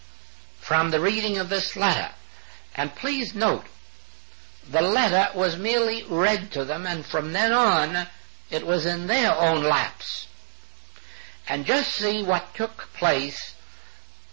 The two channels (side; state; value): left; silent; 56 dB below the other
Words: from the reading of this letter. And please note, the letter was merely read to them, and from then on it was in their own laps. And just see what took place,